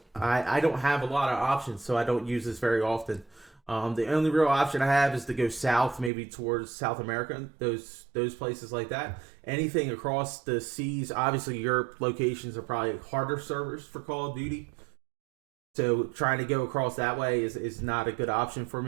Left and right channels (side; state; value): left; drops out; at 6.1 s